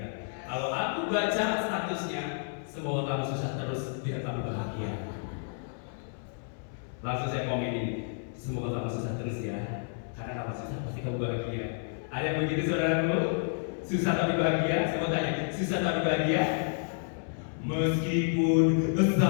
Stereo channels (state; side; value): silent; right; 58 dB below the other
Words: Kalau aku baca statusnya, semoga kamu susah terus, biar kamu bahagia. Langsung saya komen ini, semoga kamu susah terus ya. Karena kamu susah pasti kamu bahagia. Ada yang begitu saudaraku? Susah tapi bahagia? Saya mau tanya, susah tapi bahagia? Meskipun